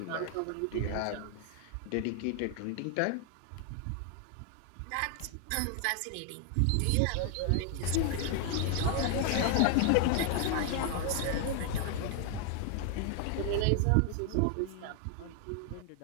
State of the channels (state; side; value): different; both; correlation 0.00